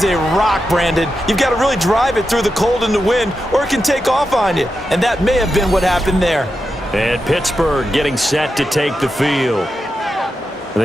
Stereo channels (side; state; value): both; normal; correlation 0.88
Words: a rock, Brandon. You've got to really drive it through the cold and the wind, or it can take off on you. And that may have been what happened there. And Pittsburgh getting set to take the field.